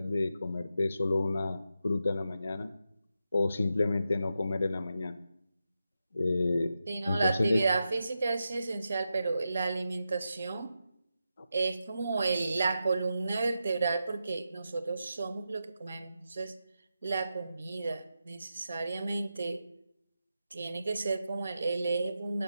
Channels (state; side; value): inverted; both; correlation -0.88